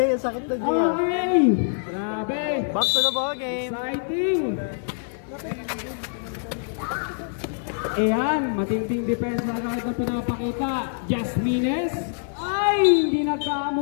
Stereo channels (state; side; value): silent; right; digital silence